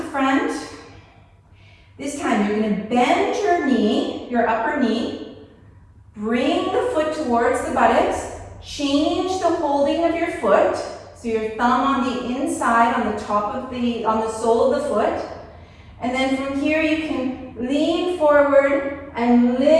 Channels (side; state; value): both; identical; correlation 1.00